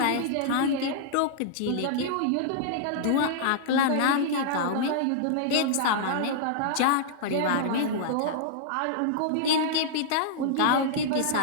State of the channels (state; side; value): different; both; correlation -0.01